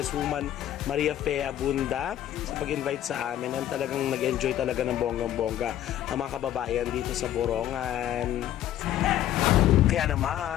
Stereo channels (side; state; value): right; quieter; 12.0 dB